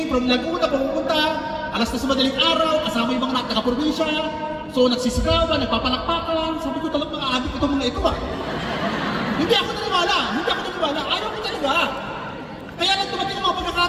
from Laguna, pumunta, alas na sa madaling araw, kasama yung mga taga-probinsya. So nagsisigawan, nagpapalakpakan. Sabi ko talagang mga adik itong mga ito ah. Hindi ako naniwala, ayaw ko talaga. Kaya lang dumating ang mga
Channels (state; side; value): identical; both; correlation 1.00